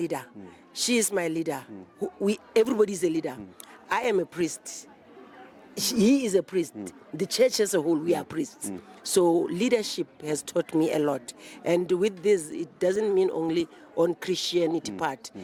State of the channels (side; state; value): both; identical; correlation 1.00